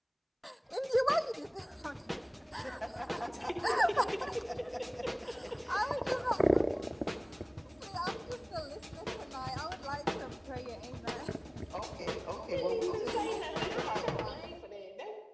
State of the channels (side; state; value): both; identical; correlation 1.00